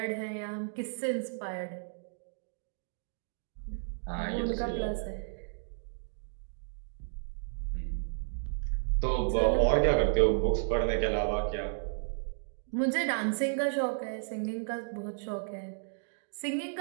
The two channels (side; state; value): left; silent; digital silence